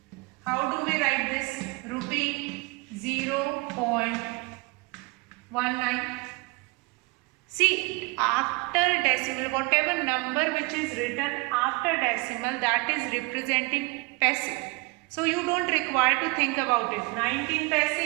How do we write this? Rupee 0.19. See, after decimal, whatever number which is written after decimal, that is representing paisa. So you don't require to think about it. 19 paisa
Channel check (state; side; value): quieter; left; 26.5 dB